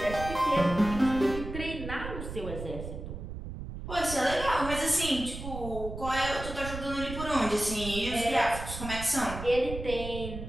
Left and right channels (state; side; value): noise; right; rumble, 8 dB below the sound